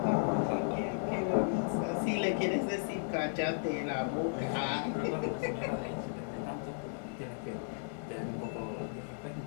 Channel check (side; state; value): right; silent; 55 dB below the other